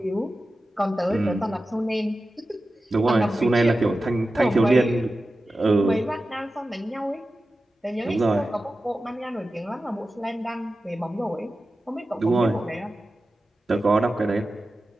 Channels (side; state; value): both; normal; correlation 0.93